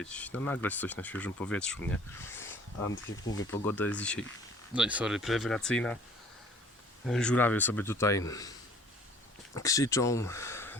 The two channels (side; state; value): both; normal; correlation 0.52